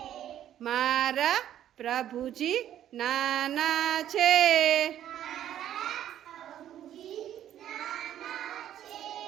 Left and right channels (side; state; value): left; quieter; 11.2 dB